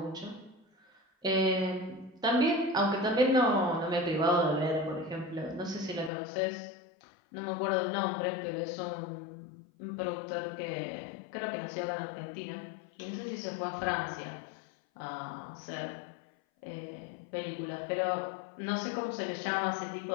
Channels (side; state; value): right; drops out; at 6.1 s